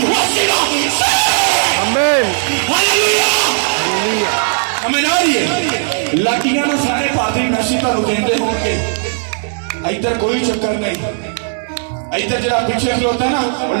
वसीला से। आमीन, हालेलुया, हालेलुया। हमें आ रही है लाटियां ना सारे पादरी मैसी तो देंदे होंगे, इधर कोई चक्कर नहीं। इधर जरा पीछे खलोता है ना,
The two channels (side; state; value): left; silent; digital silence